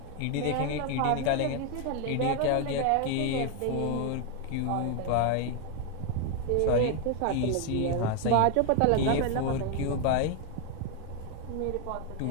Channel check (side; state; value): both; different; correlation 0.01